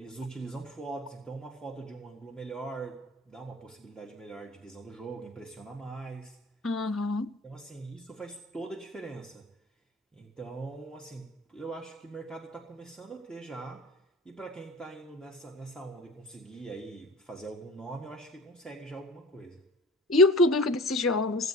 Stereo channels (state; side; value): normal; both; correlation 0.40